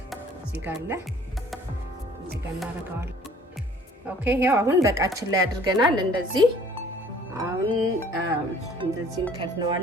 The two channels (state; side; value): normal; both; correlation 0.53